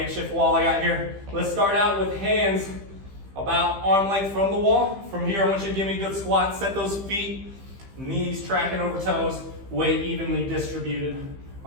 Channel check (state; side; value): late; left; 15 ms